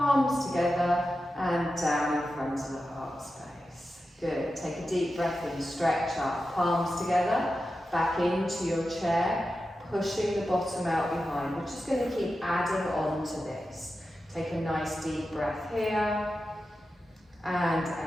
together and down in front of the heart space. Good, take a deep breath in, stretch up, palms together, back into your chair, pushing the bottom out behind. We're just going to keep adding on to this. Take a nice deep breath here and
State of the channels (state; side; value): normal; both; correlation 0.91